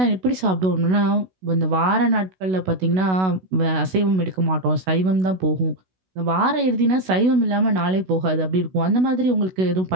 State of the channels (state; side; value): late; left; 16 ms